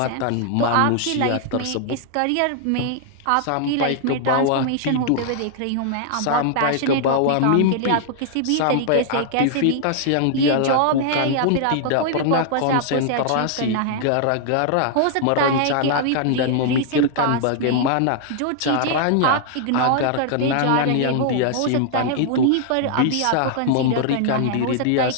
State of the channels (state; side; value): different; both; correlation -0.01